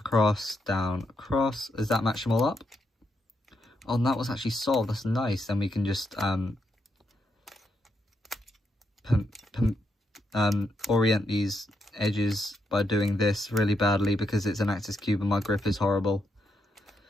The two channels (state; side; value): normal; both; correlation 0.81